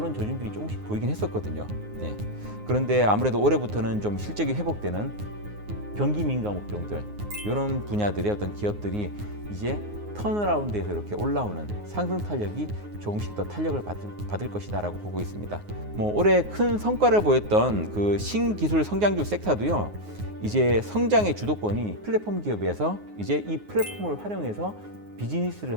조짐들이 조금씩 보이긴 했었거든요. 예. 그런데 아무래도 올해부터는 좀 실적이 회복되는 경기 민감 업종들, 이런 분야들의 어떤 기업들이 이제 턴어라운드에서 이렇게 올라오는 상승 탄력이 조금씩 더 탄력을 받을 것이다라고 보고 있습니다. 뭐 올해 큰 성과를 보였던 그 신기술 성장주 섹터도요, 이제 성장의 주도권이 플랫폼 기업에서 이제 이 플랫폼을 활용해서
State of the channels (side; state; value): left; late; 9.6 ms